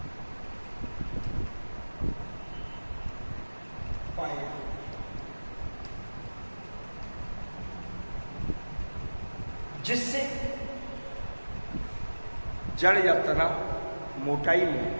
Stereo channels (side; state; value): both; inverted; correlation -1.00